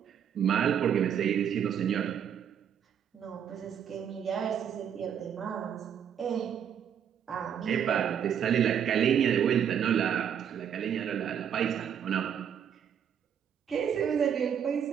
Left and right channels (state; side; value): quieter; left; 8.5 dB